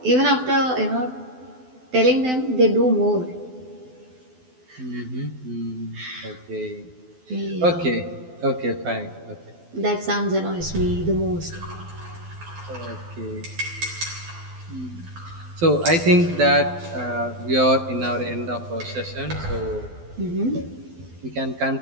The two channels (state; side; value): late; left; 12 ms